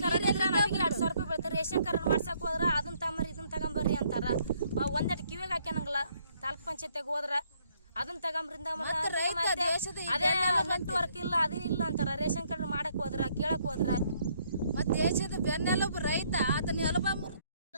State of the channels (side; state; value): both; inverted; correlation -0.67